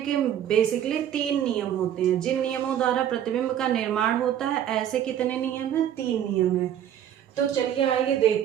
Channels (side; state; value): left; quieter; 10.4 dB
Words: बेसिकली 3 नियम होते हैं। जिन नियमों द्वारा प्रतिबिंब का निर्माण होता है, ऐसे कितने नियम हैं? 3 नियम हैं। तो चलिए आइए